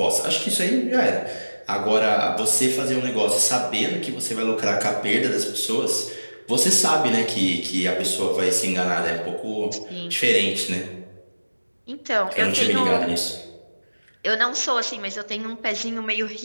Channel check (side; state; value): both; inverted; correlation -1.00